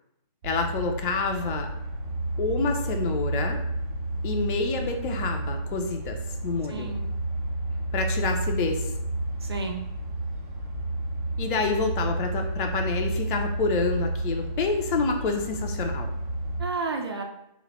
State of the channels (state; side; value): inverted; both; correlation -0.47